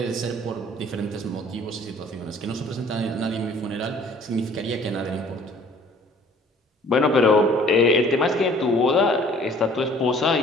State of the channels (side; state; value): both; normal; correlation 0.53